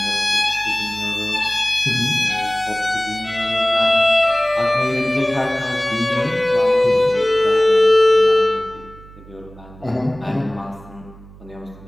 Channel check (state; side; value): noise; right; hum, 21 dB below the sound